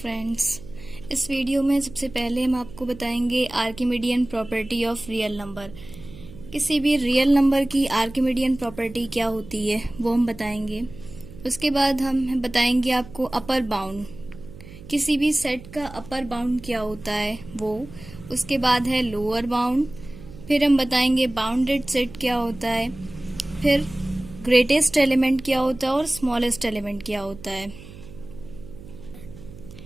इस video में सबसे पहले हम आपको बताएंगे Archimedean property of real number. किसी भी रियल नंबर की आर्किमिडियन प्रॉपर्टी क्या होती है वो हम बताएंगे। उसके बाद हम बताएंगे आपको अपर बाउंड, किसी भी सेट का अपर बाउंड क्या होता है वो। उसके बाद है लोअर बाउंड, फिर हम बताएंगे बाउंडेड सेट क्या होता है, फिर ग्रेटेस्ट एलिमेंट क्या होता है और स्मॉलेस्ट एलिमेंट क्या होता है।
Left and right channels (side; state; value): right; noise; hum, 17 dB below the sound